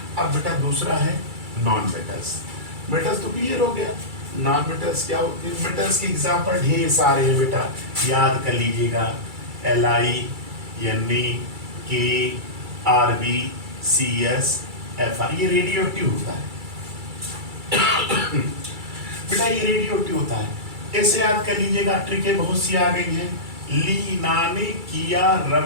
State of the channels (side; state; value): left; late; 2.3 ms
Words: अब बेटा दूसरा है नॉन मेटल्स। मेटल्स तो क्लियर हो गया, नॉन मेटल्स क्या होते हैं। मेटल्स के एग्जाम्पल ढेर सारे हैं बेटा, याद कर लीजिएगा, Li, Ne, K, Rb, Cs, Fi, ये रेडियो एक्टिव होता है। बेटा ये रेडियो एक्टिव होता है, ऐसे याद कर लीजिएगा, ट्रिकें बहुत सी आ गई हैं। लीना ने किया